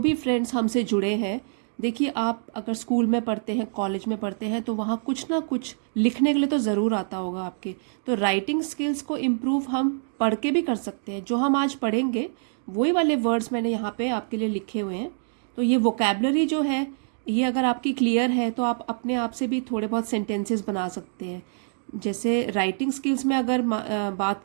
फ्रेंड्स हमसे जुड़े हैं, देखिए आप अगर स्कूल में पढ़ते हैं, कॉलेज में पढ़ते हैं, तो वहाँ कुछ ना कुछ लिखने के लिए तो ज़रूर आता होगा आपके। तो राइटिंग स्किल्स को इम्प्रूव हम पढ़ के भी कर सकते हैं। जो हम आज पढ़ेंगे वही वाले वर्ड्स मैंने यहाँ पे आपके लिए लिखे हुए हैं। तो ये वोकेबलरी जो है, ये अगर आपकी क्लियर है तो आप अपने आप से भी थोड़े बहुत सेंटेंसेस बना सकते हैं। जैसे राइटिंग स्किल्स में अगर बात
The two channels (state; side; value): silent; left; digital silence